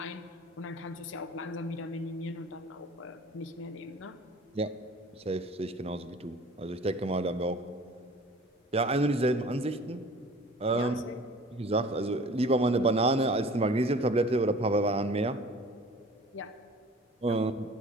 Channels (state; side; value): normal; both; correlation 0.46